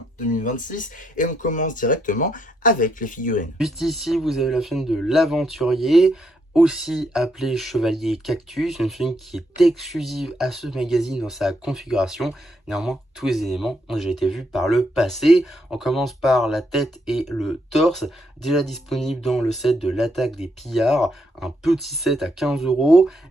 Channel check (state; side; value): normal; both; correlation 0.76